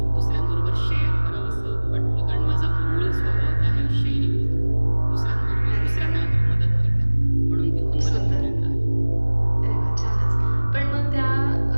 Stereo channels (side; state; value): both; inverted; correlation -1.00